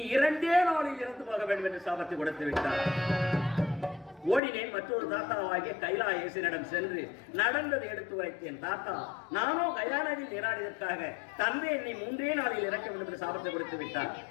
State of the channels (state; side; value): drops out; right; at 4.4 s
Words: 2 நாளில் இறந்து போக வேண்டும் என்று சாபத்தை கொடுத்து விட்டார். ஓடினேன். மற்றொரு தாத்தாவாகிய கைலாயேசனிடம் சென்று நடந்ததை எடுத்து உரைத்தேன். தாத்தா, நானோ கயா நதியில் நீராடியதற்காக தந்தை என்னை 3 நாளில் இறக்க வேண்டும் என்று சாபத்தை கொடுத்து விட்டார்.